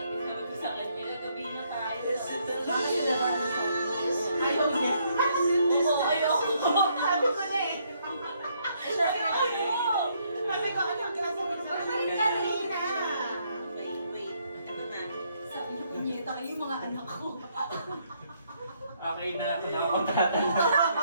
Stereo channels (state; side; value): inverted; both; correlation -0.71